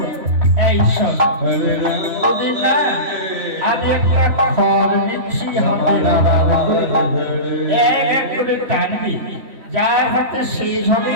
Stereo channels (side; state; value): left; late; 3.1 ms